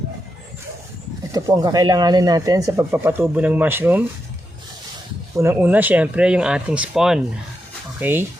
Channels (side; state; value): both; normal; correlation 0.85